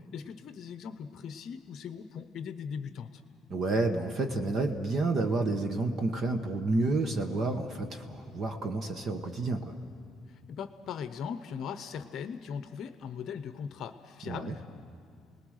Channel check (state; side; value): normal; both; correlation 0.73